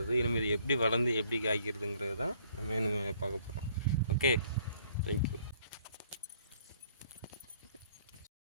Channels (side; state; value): both; inverted; correlation -0.62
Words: இனிமேல் இது எப்படி வளர்ந்து எப்படி காய்க்கிறதுங்கிறது தான் நம்ம பார்க்க போகிறோம். Okay, thank you.